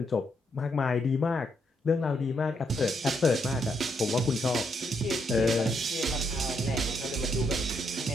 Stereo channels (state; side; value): normal; both; correlation 0.76